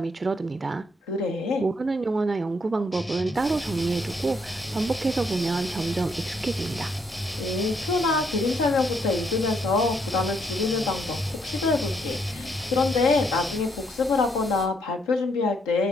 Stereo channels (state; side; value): normal; both; correlation 0.73